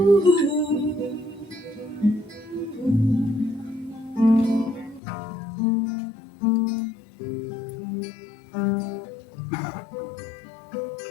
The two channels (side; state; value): right; drops out; at 5.0 s